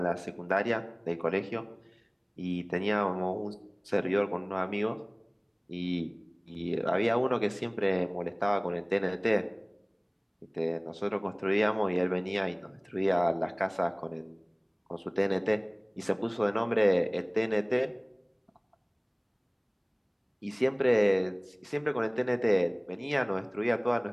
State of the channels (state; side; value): identical; both; correlation 1.00